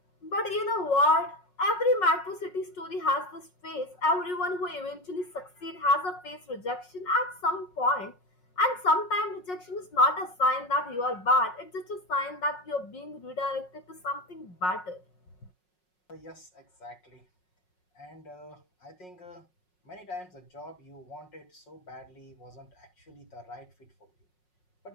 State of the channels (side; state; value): right; late; 5.5 ms